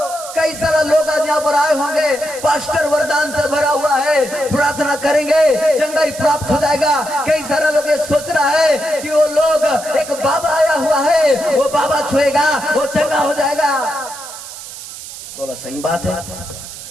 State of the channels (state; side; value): noise; right; hiss, 12 dB below the sound